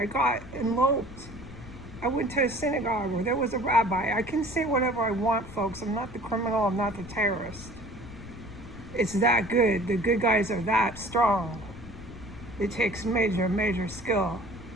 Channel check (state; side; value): noise; left; rumble, 15 dB below the sound